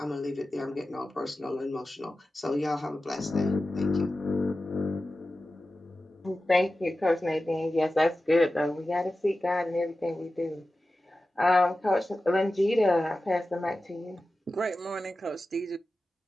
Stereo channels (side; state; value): both; normal; correlation 0.94